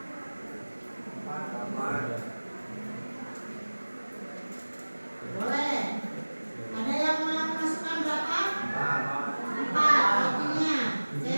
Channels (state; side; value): inverted; both; correlation -1.00